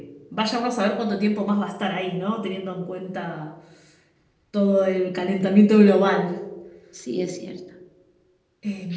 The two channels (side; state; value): both; identical; correlation 1.00